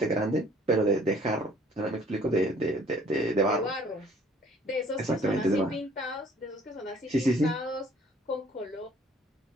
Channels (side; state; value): both; normal; correlation 0.57